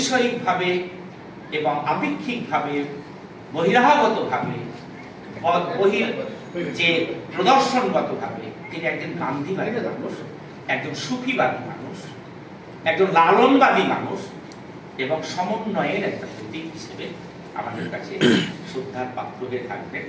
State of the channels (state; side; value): identical; both; correlation 1.00